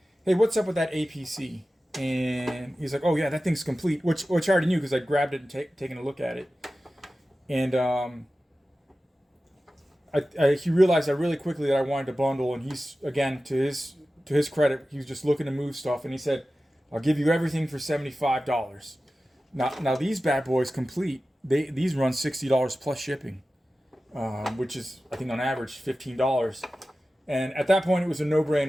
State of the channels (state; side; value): normal; both; correlation 0.95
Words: hey, what's up with that APC? And he's like, oh yeah, that thing's complete, which I already knew because I grabbed it and taken a look at it. And he realized that really quickly that I wanted to bundle, and he's, again, to his credit, he was just looking to move stuff, and he said, I'll give you everything for $75. Now these bad boys complete. These run $60 plus shipping, which is, I think, on average $15. And at that point, it was a